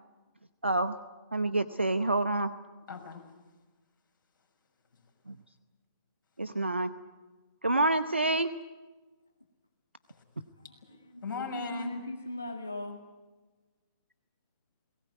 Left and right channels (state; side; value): inverted; both; correlation -0.66